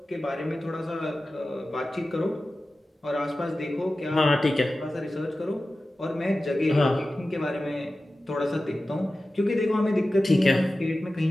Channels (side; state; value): both; normal; correlation 0.95